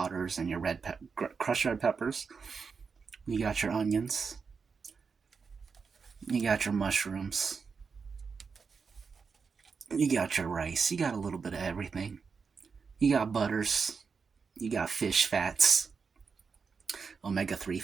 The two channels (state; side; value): quieter; left; 5.4 dB